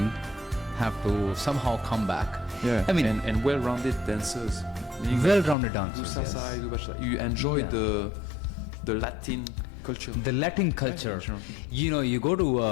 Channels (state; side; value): drops out; right; at 5.6 s